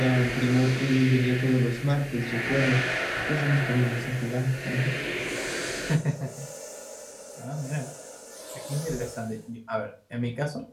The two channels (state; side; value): identical; both; correlation 1.00